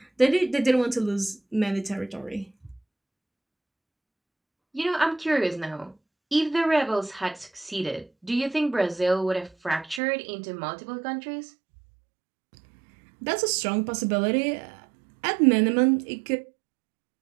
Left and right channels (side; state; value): left; drops out; at 10.0 s